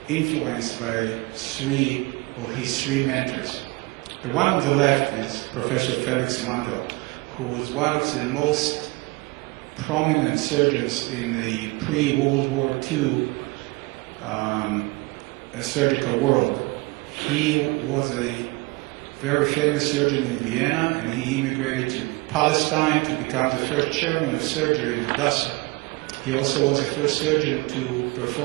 influenced by his three mentors. The one on the left is Professor Felix Mandel, who was one of the most prominent surgeons in the pre-World War II surgical world. He was a very famous surgeon in Vienna, and he immigrated to Palestine to become the first chairman of surgery in Hadassah. He also was the first surgeon to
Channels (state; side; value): quieter; left; 24.8 dB